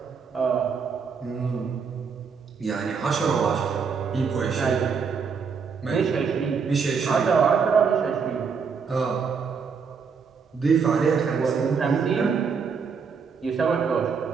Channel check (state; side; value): quieter; left; 5.8 dB